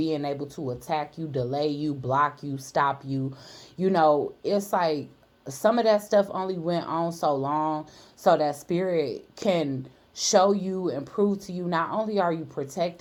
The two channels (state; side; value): identical; both; correlation 1.00